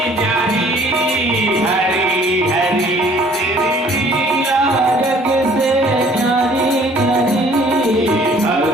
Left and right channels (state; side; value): normal; both; correlation 0.56